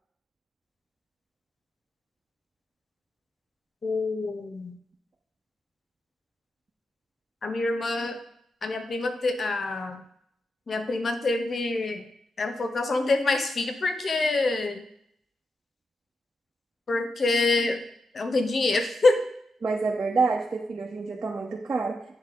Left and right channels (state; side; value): normal; both; correlation 0.86